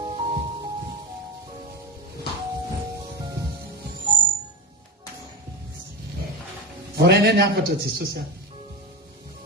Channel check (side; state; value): both; normal; correlation 0.20